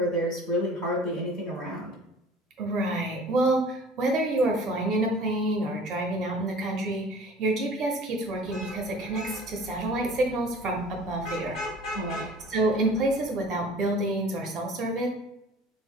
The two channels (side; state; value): both; normal; correlation 0.46